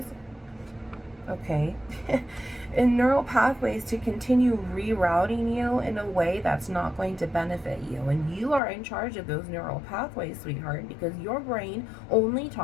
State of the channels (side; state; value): right; drops out; at 8.6 s